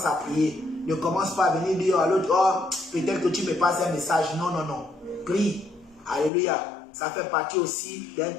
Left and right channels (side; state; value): right; drops out; at 6.3 s